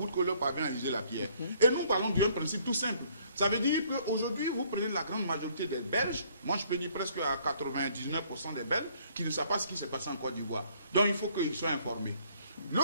que l'eau parvient à user la pierre. Et nous parlons d'un principe tout simple. Ça veut dire qu'aujourd'hui, vous prenez la grande majorité des Belges, moi je peux dire presque à 99% des Belges, qui ne savent pas ce qui s'est passé en Côte d'Ivoire. Donc il faut qu'ils soient informés.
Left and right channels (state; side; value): inverted; both; correlation -0.63